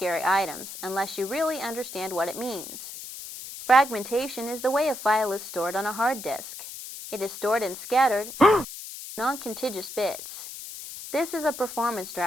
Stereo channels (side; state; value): left; noise; hiss, 11 dB below the sound